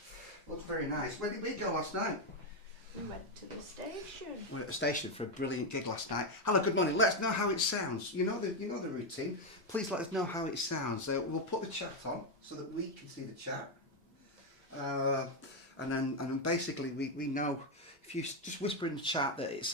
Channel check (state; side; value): normal; both; correlation 0.05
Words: Looks very nice. Where did we go last night? We went to the station. We were at the station for a brilliant gig last night. Hello, good morning. Let us know how it sounds. You know the routine. Please let us know how it sounds. We'll put the chat on so that we can see the chat. And then basically we know if you just whisper in the chat that it